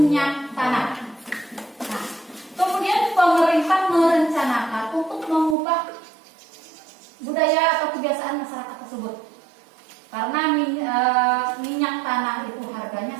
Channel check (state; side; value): drops out; left; at 5.6 s